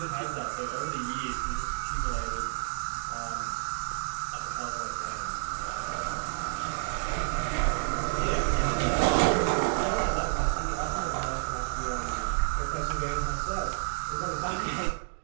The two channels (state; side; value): silent; left; digital silence